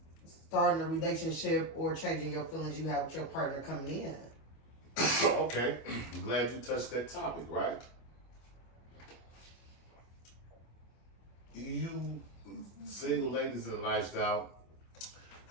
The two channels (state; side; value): late; right; 25 ms